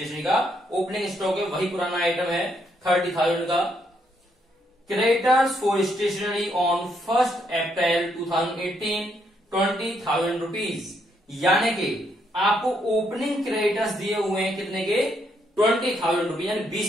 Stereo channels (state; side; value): normal; both; correlation 0.75